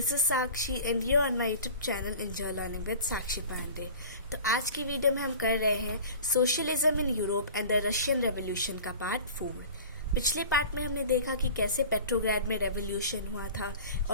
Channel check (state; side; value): inverted; both; correlation -0.40